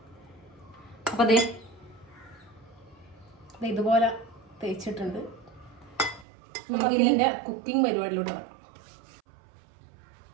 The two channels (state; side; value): drops out; left; at 6.2 s